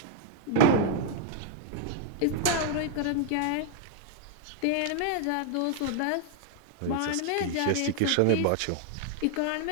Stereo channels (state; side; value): different; both; correlation -0.01